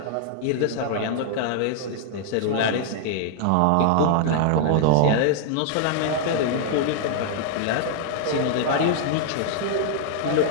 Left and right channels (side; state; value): both; different; correlation 0.00